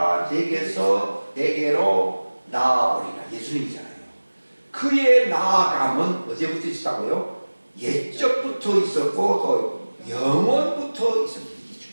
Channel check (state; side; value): inverted; both; correlation -1.00